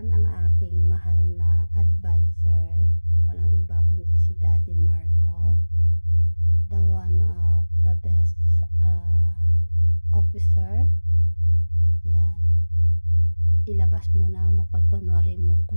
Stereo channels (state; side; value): inverted; both; correlation -1.00